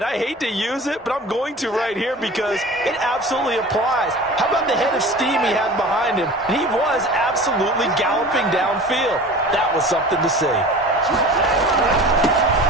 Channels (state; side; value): normal; both; correlation 0.39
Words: I hate to use it, but I'm going to right here because it absolutely applies. How about the head of steam he had behind him? And he was absolutely galloping downfield. That was something to see.